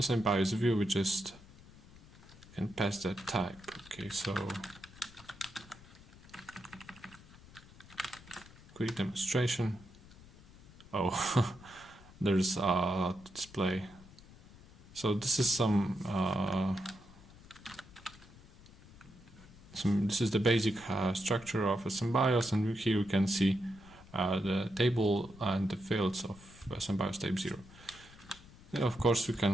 same BIOS view, we just can pass that type. Okay, so quick demonstration. Oh, there's a display. So this is this is the basic structure of a SystemBIOS, and here you can see the table and the fields of SystemBIOS type 0. Yeah, of course, we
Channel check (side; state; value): left; noise; rumble, 21 dB below the sound